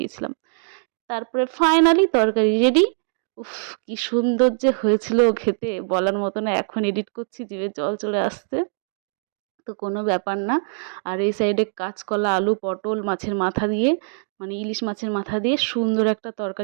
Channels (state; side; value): silent; left; digital silence